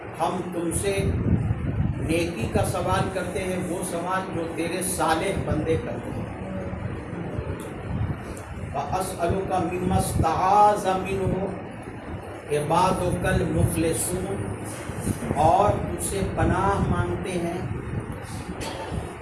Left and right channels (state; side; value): identical; both; correlation 1.00